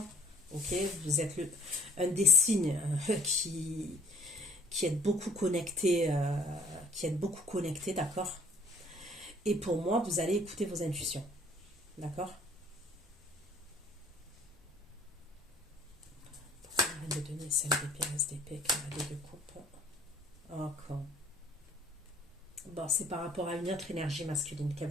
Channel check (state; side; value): normal; both; correlation 0.55